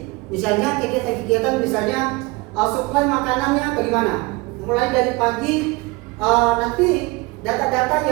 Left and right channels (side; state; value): left; quieter; 24.2 dB